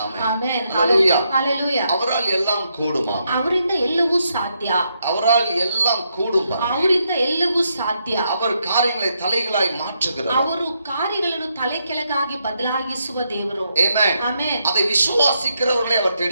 ಆಮೆನ್. ಆಮೆನ್. ஹalleluya. ஹalleluya. அவரால் எல்லாம் கூடுமா. ಅವರಿಂದ ಎಲ್ಲವೂ ಸಾಧ್ಯ. அவரால் எல்லாம் கூடும். ಅವರಿಂದ ಎಲ್ಲವೂ ಸಾಧ್ಯ. அவர் காரியங்களை தலைகளாய் மாற்றுகிறார். ಅವರು ಕಾರ್ಯಗಳನ್ನು ತಲೆ ಕೆಳಗಾಗಿ ಬದಲಾಗಿಸುವ ದೇವರು. ஆமென். ಆಮೆನ್. அதை விசுவாசிக்கிறவர்களை அவர்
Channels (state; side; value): inverted; both; correlation -0.79